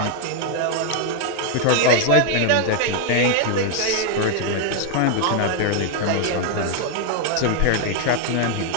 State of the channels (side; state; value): both; different; correlation 0.00